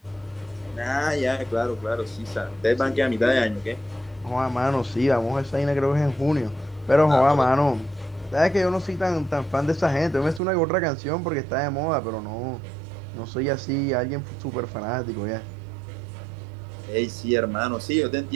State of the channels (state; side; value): drops out; left; at 10.4 s